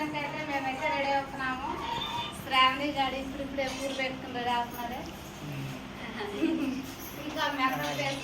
మేమైతే రెడీ అవుతున్నాము. శ్రావణి గాడి ఇప్పుడే పూలు పెట్టుకుంటే రాస్తున్నాడే. ఇంకా మేకప్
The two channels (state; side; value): identical; both; correlation 1.00